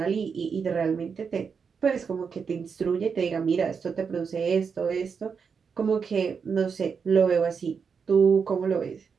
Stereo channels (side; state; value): left; quieter; 6.0 dB